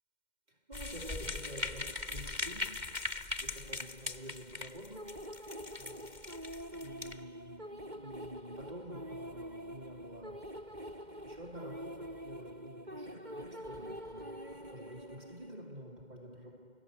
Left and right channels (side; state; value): left; late; 2.1 ms